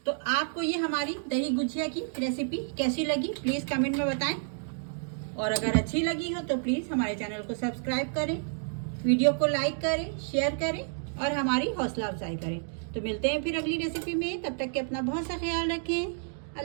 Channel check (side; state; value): left; silent; digital silence